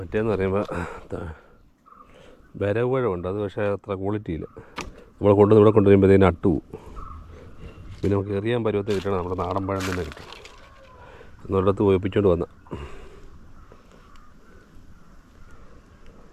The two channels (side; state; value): both; identical; correlation 1.00